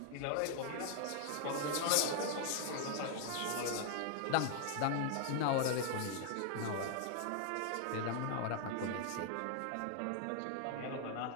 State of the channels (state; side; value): different; both; correlation 0.00